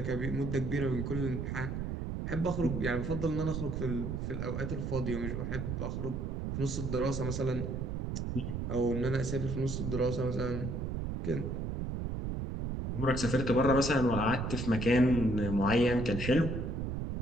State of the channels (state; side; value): noise; right; rumble, 3 dB below the sound